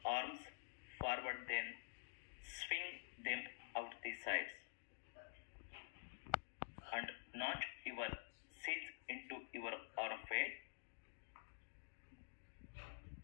arms forward, then swing them out the sides. And notch your seats into your arm weight.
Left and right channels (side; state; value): right; silent; digital silence